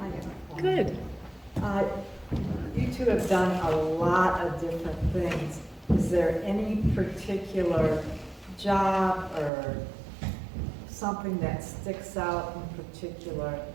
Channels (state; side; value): drops out; left; at 9.5 s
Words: Good. You two have done a lot of different things. Is there any particular job or something that sticks out in particular